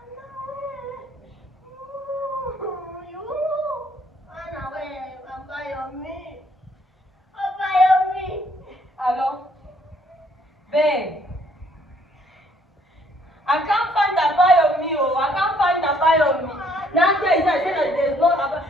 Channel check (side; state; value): both; normal; correlation 0.65